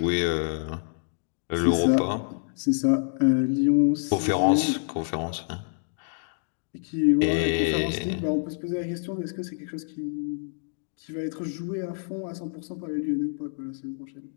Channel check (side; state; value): right; silent; digital silence